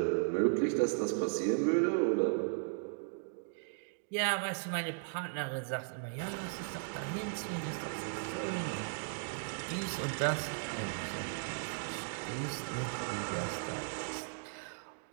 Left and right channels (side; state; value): left; silent; digital silence